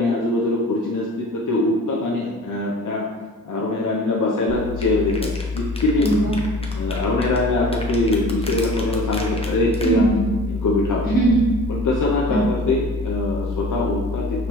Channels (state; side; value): normal; both; correlation 0.43